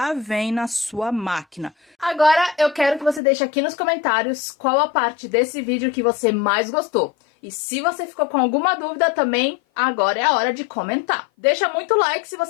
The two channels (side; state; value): right; drops out; at 3.2 s